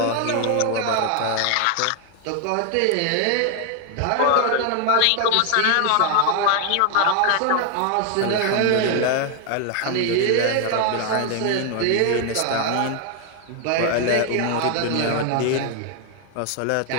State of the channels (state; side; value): different; both; correlation 0.00